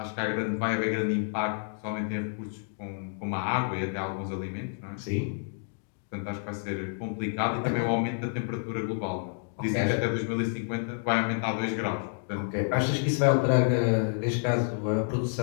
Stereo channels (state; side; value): silent; right; digital silence